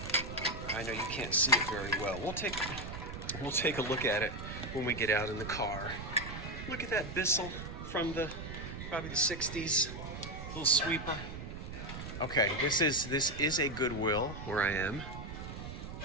I know you can't see it very well. We'll take a look at it when we get out in the car. Look at that Bissell from probably the 60s. Little sweeper. Okay, this is a Goodwill where I am.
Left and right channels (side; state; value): right; noise; rumble, 8 dB below the sound